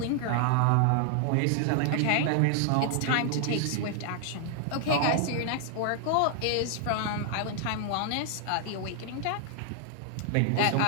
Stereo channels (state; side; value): different; both; correlation 0.00